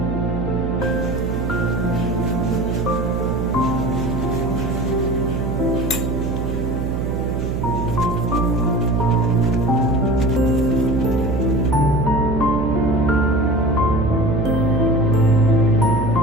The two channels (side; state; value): right; noise; hum, 2 dB below the sound